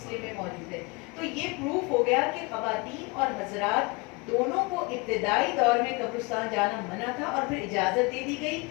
میں موجود ہے. تو یہ پروف ہو گیا کہ خواتین اور حضرات دونوں کو ابتدائی دور میں قبرستان جانا منع تھا اور پھر اجازت دے دی گئی.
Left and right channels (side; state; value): right; quieter; 27.4 dB